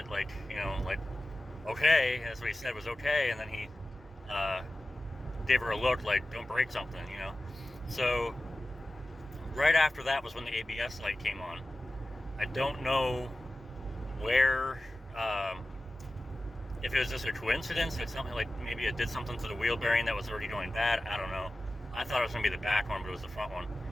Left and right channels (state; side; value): normal; both; correlation 0.95